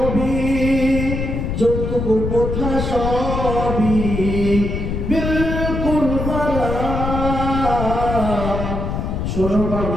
যৌতুক প্রথা সবই বিলকুল হারাম। শোনো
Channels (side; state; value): left; noise; rumble, 3 dB below the sound